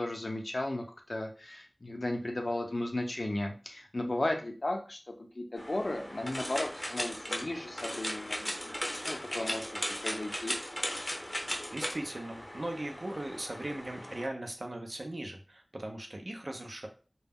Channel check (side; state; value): both; normal; correlation 0.98